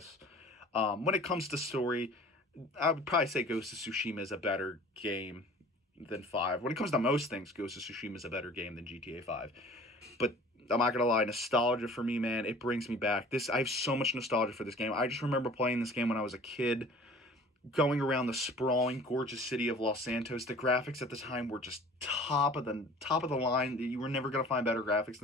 When it comes to story, I would probably say Ghost of Tsushima is a better game than 5. When it comes to most things, Ghost of Tsushima is a better game than GTA 5. But I'm not gonna lie, nostalgia for me, man, it brings me back. I have so much nostalgia for this game. I just remember playing this game when I was a kid, going around the sprawling, gorgeous city of Los Santos. The graphics at the time were just top of the line. You were never gonna find better graphics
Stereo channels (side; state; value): both; normal; correlation 0.47